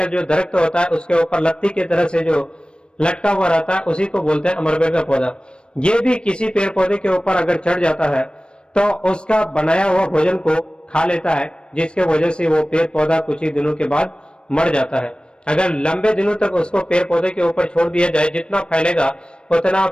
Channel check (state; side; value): late; right; 0.055 ms